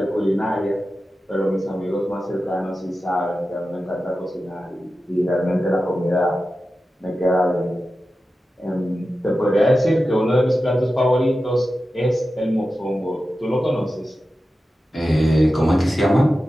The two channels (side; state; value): both; normal; correlation 0.93